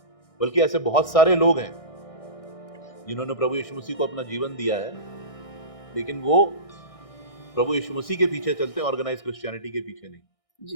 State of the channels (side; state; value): right; late; 1.6 ms